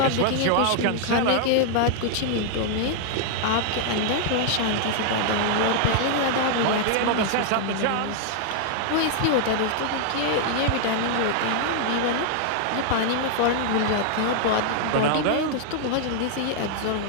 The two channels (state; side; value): different; both; correlation -0.01